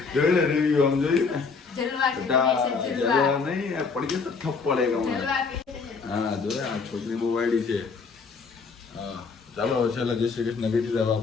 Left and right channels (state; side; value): quieter; right; 4.9 dB